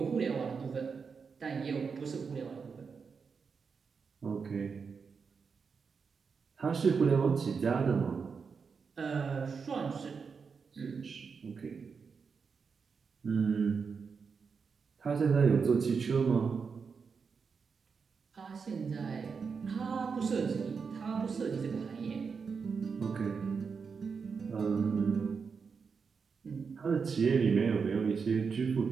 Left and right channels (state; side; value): quieter; left; 5.6 dB